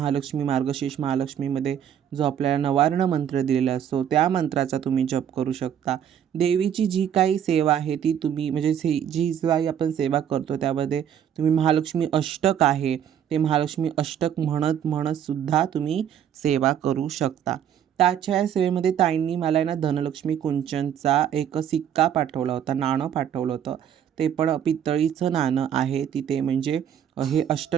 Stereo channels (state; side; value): quieter; left; 9.3 dB